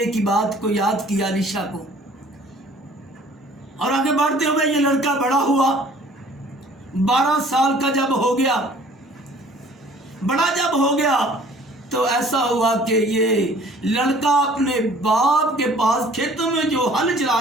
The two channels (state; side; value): normal; both; correlation 0.53